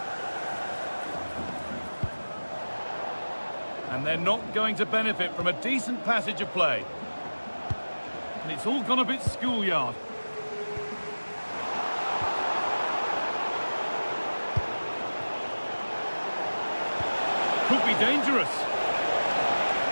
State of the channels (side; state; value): both; inverted; correlation -1.00